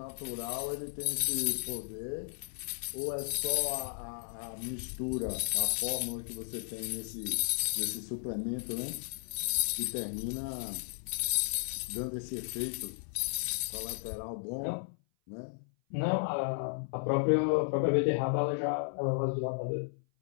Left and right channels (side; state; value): right; silent; 55 dB below the other